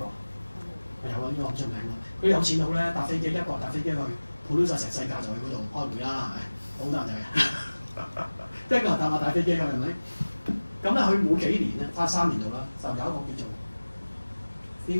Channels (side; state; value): both; inverted; correlation -1.00